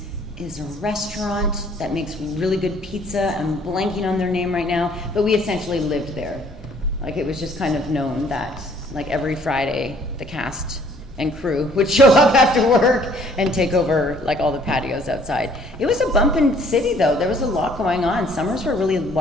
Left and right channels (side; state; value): both; normal; correlation 0.59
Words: is a restaurant that makes really good pizza. I'm blanking on their name right now, but we essentially lived there. Like, it was just kind of known that, like, every Friday, the cast and crew would show up after work and take over, like, all the patios outside. It was a bumpin' city, though. There was a lot going on. Summers were really